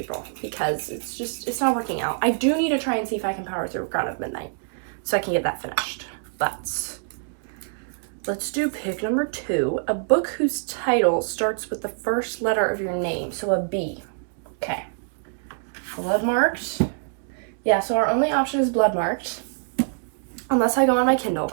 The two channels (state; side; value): silent; left; digital silence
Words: because it's not working out. I do need to try and see if I can power through Crown of Midnight so I can get that finished. But let's do pick number 2, a book whose title starts with the first letter of your name, so a B. Okay. Bloodmarked. Yeah, so our only option is Bloodmarked, unless I go on my Kindle,